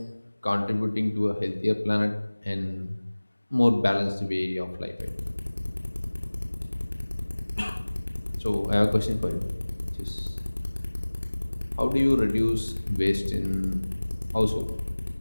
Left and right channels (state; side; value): inverted; both; correlation -1.00